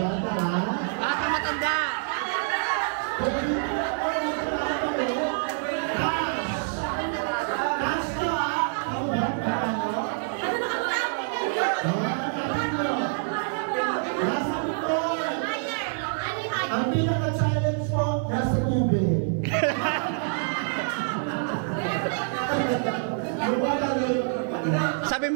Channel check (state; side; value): silent; left; digital silence